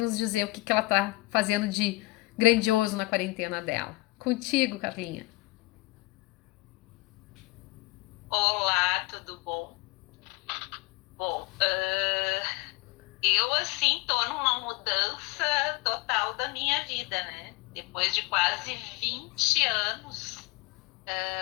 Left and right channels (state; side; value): quieter; right; 21.6 dB